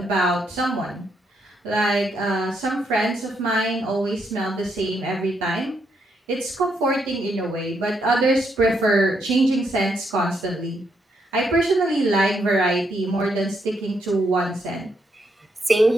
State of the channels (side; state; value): both; normal; correlation 0.77